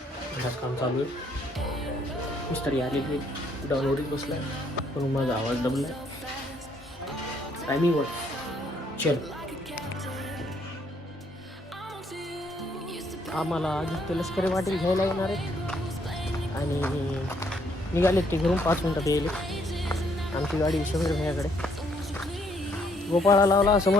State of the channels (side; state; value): both; normal; correlation 0.69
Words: घरात काम चालू आहे. मिस्त्री आलेली डाऊनवरच बसला आहे, पण माझा आवाज दबला आहे. टायमिंग वर चल. आम्हाला आदित्य लष्करी वाटेल घ्यायला येणार आहे आणि निघालेत ते घरून 5 मिनिटात येईल. आमची गाडी शहर भैयाकडे. गोपाळा लावला,